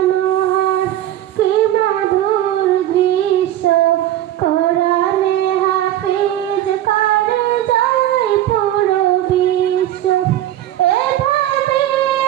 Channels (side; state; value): left; quieter; 13.0 dB